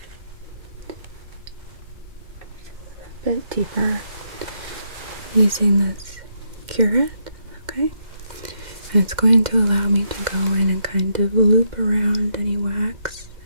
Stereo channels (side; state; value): left; late; 2.1 ms